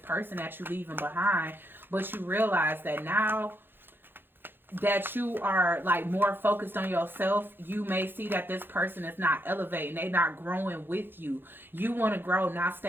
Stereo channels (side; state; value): left; late; 0.10 ms